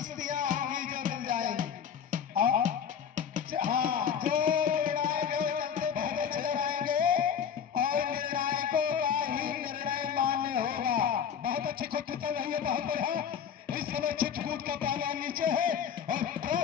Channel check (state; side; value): quieter; right; 7.9 dB